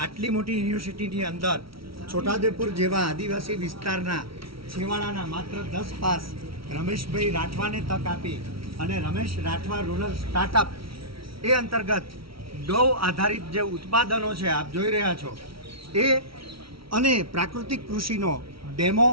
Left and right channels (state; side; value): late; left; 0.75 ms